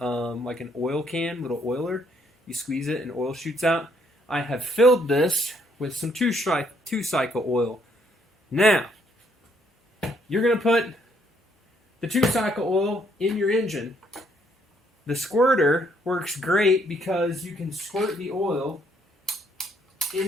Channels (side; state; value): both; normal; correlation 0.69